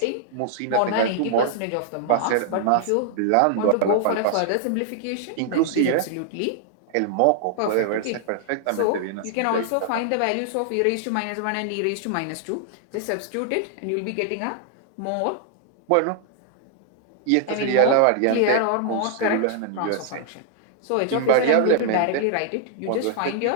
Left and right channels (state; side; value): different; both; correlation -0.01